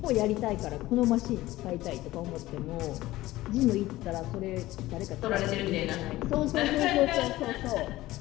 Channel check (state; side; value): quieter; right; 17.0 dB